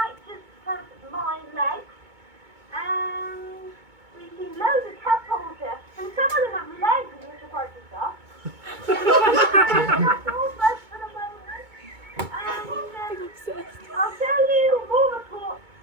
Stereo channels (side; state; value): left; late; 2.2 ms